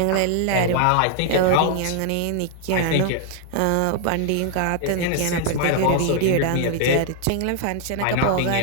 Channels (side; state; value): both; different; correlation 0.00